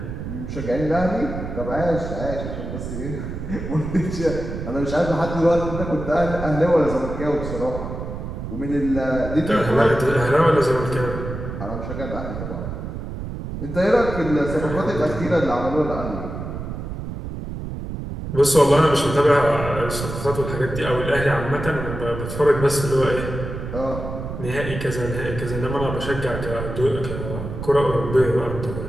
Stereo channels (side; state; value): right; noise; rumble, 7 dB below the sound